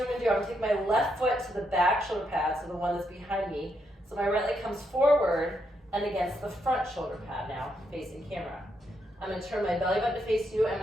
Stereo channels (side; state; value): both; normal; correlation 0.79